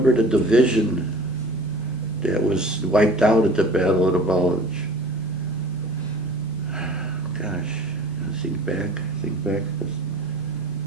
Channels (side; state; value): both; normal; correlation 0.44